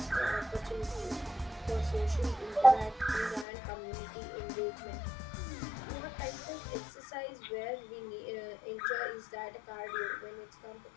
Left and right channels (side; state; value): right; drops out; at 3.5 s